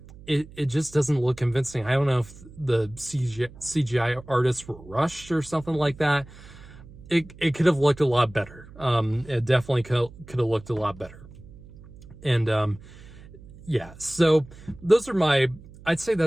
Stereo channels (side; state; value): right; noise; hum, 19 dB below the sound